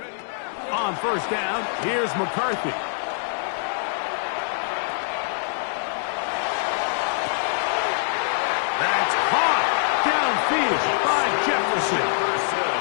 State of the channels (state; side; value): silent; right; digital silence